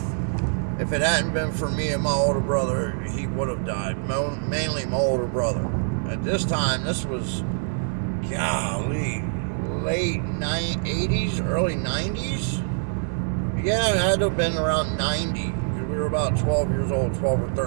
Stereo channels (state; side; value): silent; left; 62 dB below the other